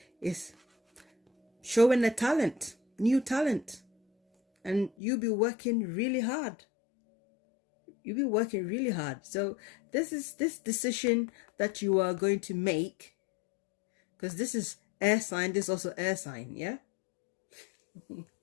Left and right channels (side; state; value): right; drops out; at 4.9 s